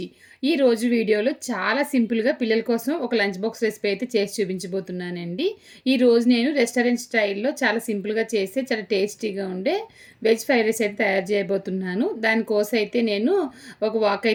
ఈ రోజు వీడియోలో చాలా సింపుల్గా పిల్లల కోసం ఒక లంచ్ బాక్స్ రెసిపీ అయితే చేసి చూపించబోతున్నానండి. ఈ రోజు నేను రెస్టారెంట్ స్టైల్లో చాలా సింపుల్గా చేసి చాలా టేస్టీగా ఉండే వెజ్ ఫ్రైడ్ రైస్ అయితే తయారు చేయబోతున్నాను. దానికోసం అయితే నేను ఒక వాక్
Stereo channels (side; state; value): both; identical; correlation 1.00